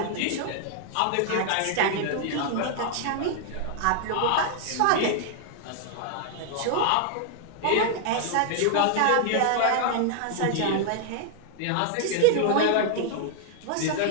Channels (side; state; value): both; different; correlation 0.00